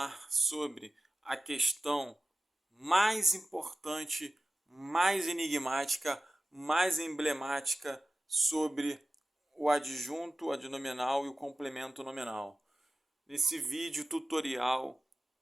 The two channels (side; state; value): both; normal; correlation 0.95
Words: sobre a questão mais importante, mais enigmática, mais emblemática sobre o adjunto adnominal e o complemento nominal. Nesse vídeo tutorial